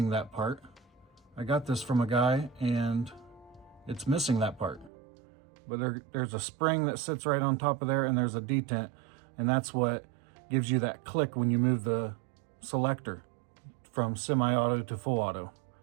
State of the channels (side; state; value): left; drops out; at 4.9 s